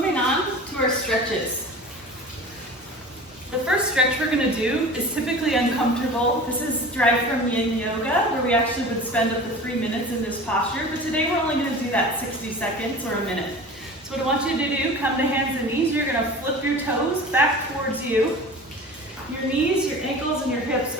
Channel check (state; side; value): normal; both; correlation 0.37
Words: on to our stretches. The first stretch we're going to do is typically uncomfortable. This is derived from yin yoga, where we actually would spend up to 3 minutes in this posture, but today we're only going to do that 60 seconds or a minute. So what I want you to do, come to hands and knees, you're going to flip your toes back towards you. Your knees, your ankles, and your hips